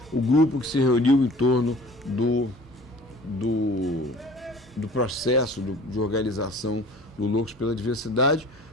o grupo que se reuniu em torno do processo de organização do Loucos pela Diversidade,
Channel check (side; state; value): both; normal; correlation 0.46